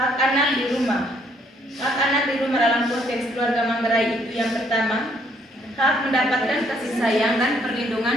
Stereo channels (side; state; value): both; normal; correlation 0.67